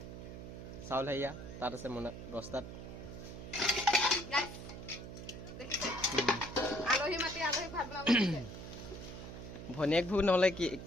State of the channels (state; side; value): noise; right; hum, 10 dB below the sound